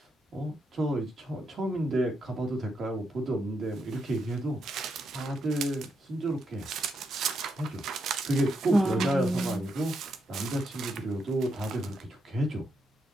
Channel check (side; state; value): both; normal; correlation 0.81